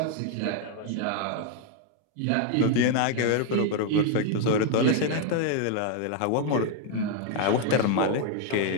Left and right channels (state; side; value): different; both; correlation 0.00